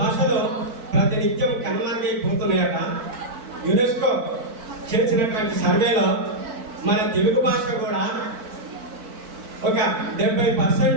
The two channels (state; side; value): late; left; 4.5 ms